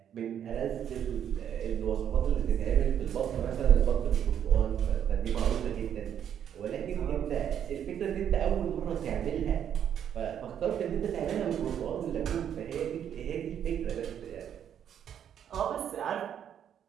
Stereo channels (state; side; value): quieter; left; 9.2 dB